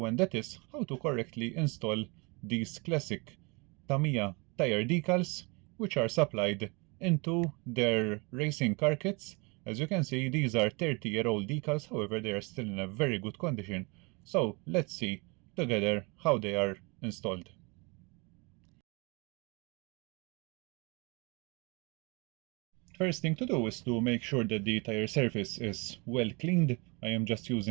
and that is how to correctly install these classic Tamiya tire decals, which are supplied into their racing car kits. As you can see, these are 30-year-old decals, however they are still in a very good condition. So let's see together how they are installed. First thing to do is to make sure that the tire surface is well cleaned. I am just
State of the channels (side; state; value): left; quieter; 29.2 dB